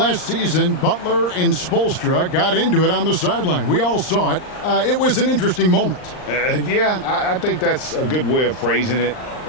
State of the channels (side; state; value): right; late; 39 ms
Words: season, Butler and Spoelstra got into it on the sideline. We all saw it. It was an interesting moment. Yeah, I think that's a good way of phrasing it.